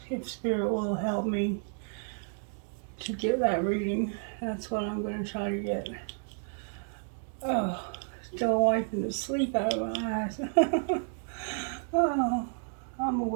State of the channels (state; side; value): silent; left; 57 dB below the other